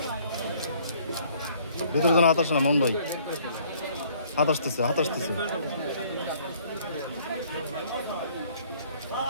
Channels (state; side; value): inverted; both; correlation -0.59